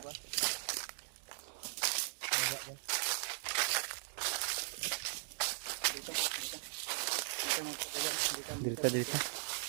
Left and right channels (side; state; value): left; silent; digital silence